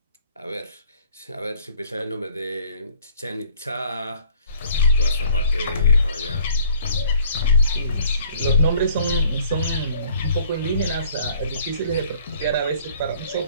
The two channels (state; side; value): inverted; both; correlation -0.58